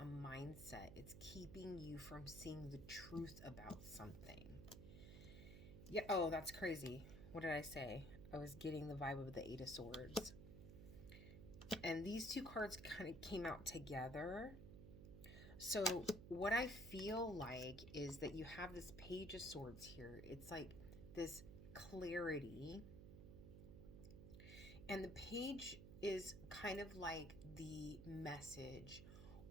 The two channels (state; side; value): noise; right; hum, 11 dB below the sound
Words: mindset. It's keeping you from seeing the truth about something. Yeah, oh, that's crazy. What did I say? I was getting the vibe of the Eight of Swords. And these two cards kind of came out together. So what I feel like is that you have this Page of Swords here. It's like this clarity. And the page is kind of like the message